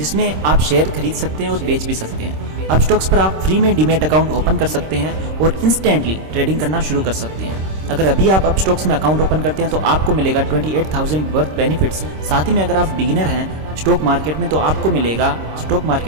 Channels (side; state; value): left; late; 26 ms